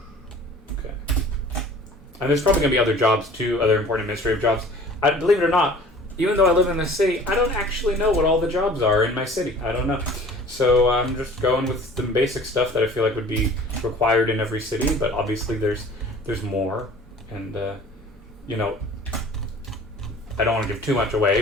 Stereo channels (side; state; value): both; normal; correlation 0.46